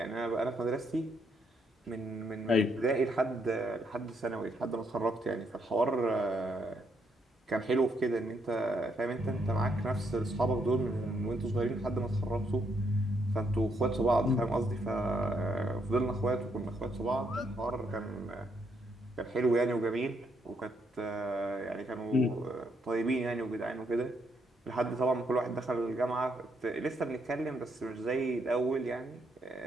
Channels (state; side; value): normal; both; correlation 0.75